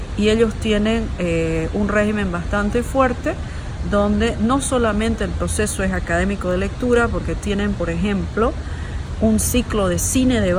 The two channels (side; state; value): both; identical; correlation 1.00